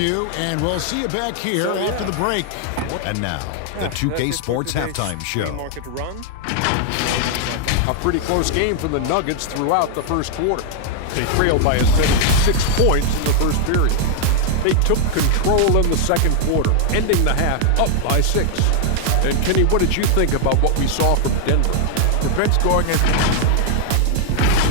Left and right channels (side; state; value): both; different; correlation 0.00